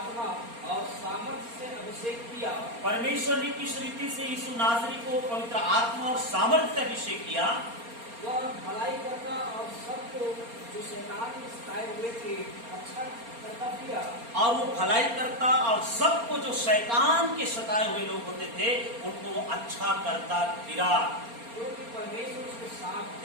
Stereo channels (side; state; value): left; late; 4.3 ms